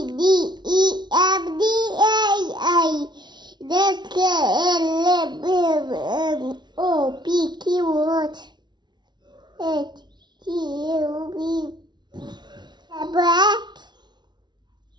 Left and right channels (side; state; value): left; late; 0.21 ms